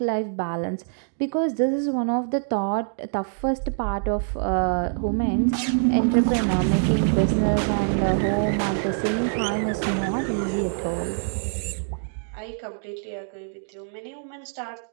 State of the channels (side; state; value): left; silent; digital silence